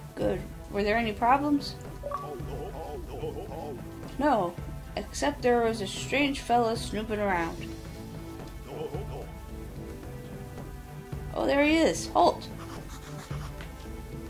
Good. Were there any problems? No, except there was a strange fella snooping around. Oh, there he is. Halt.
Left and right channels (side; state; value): both; identical; correlation 1.00